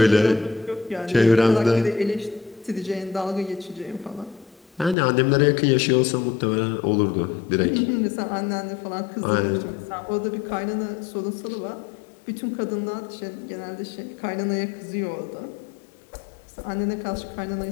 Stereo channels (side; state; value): right; drops out; at 5.0 s